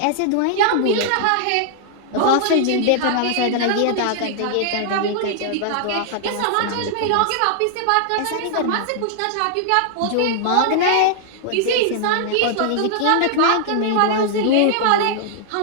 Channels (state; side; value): different; both; correlation -0.01